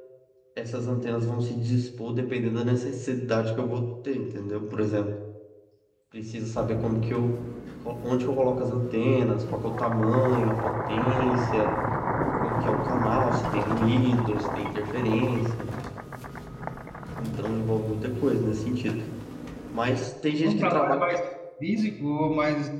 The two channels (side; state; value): both; identical; correlation 1.00